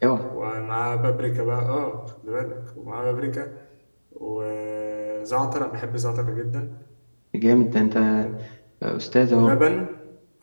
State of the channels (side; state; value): both; inverted; correlation -1.00